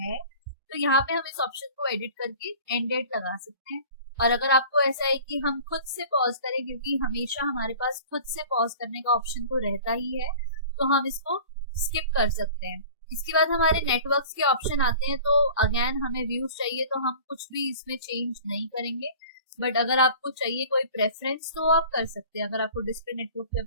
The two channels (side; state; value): both; inverted; correlation -0.43